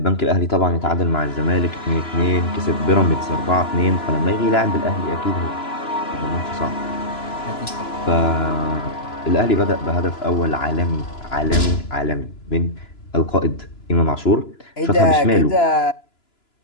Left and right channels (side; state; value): right; late; 2.9 ms